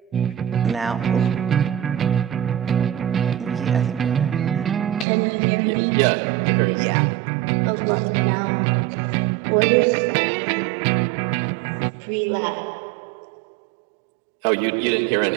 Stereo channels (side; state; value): left; drops out; at 5.1 s